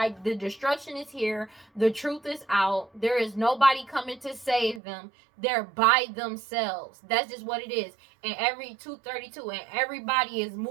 the destruction is here. The truth is out. There is nobody coming to save them. They're by themselves. That's just what it is. And every 232, and everybody is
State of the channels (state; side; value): drops out; left; at 4.8 s